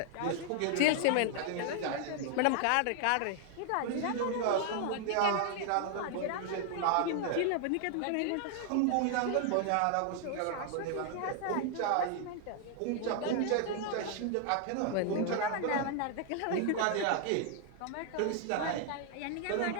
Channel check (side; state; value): both; different; correlation 0.00